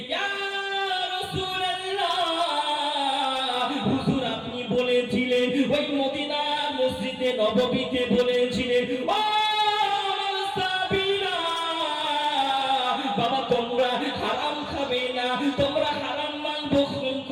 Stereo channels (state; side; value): identical; both; correlation 1.00